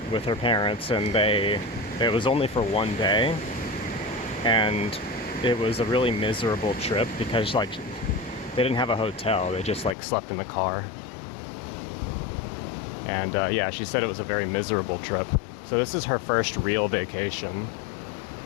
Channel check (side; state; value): right; drops out; at 10.0 s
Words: with her parents, and it was only for one day, and it was a really miserable trip because like they didn't have a hotel, they just like slept in the car. And yeah, she said it was a very miserable trip. So this is her first real vacation.